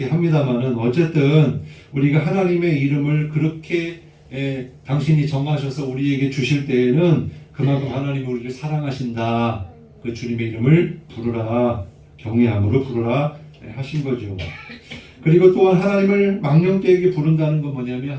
합니다만은 어쨌든 우리가 하나님의 이름을 그렇게 당신이 정하셔서 우리에게 주실 때에는 그만큼 하나님이 우리를 사랑하신다. 그 주님의 이름을 부르라, 경외함으로 부르라 하신 거죠. 그리고 또한 하나님을 망령되게 부른다는 건 뭐냐면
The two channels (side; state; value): both; identical; correlation 1.00